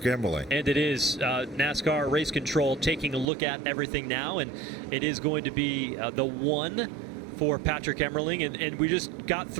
Emmerling. And it is NASCAR Race Control taking a look at everything now, and it is going to be the one for Patrick Emmerling, and we just got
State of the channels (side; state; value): left; drops out; at 3.2 s